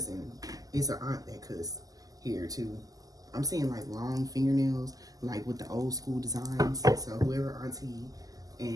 It's an aunt that cuss here too. I'm seeing like long fingernails, like with the old school designs. So whoever auntie,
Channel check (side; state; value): left; late; 0.17 ms